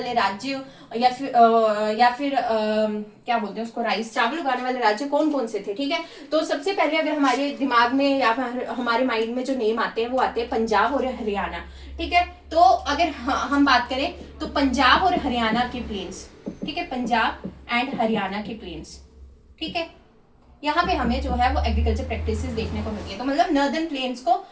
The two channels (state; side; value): identical; both; correlation 1.00